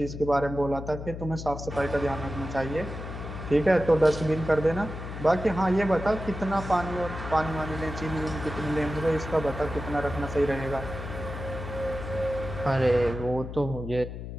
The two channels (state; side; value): noise; left; hum, 8 dB below the sound